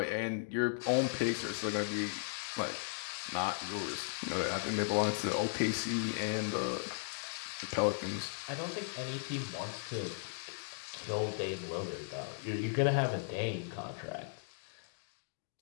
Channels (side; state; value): right; silent; digital silence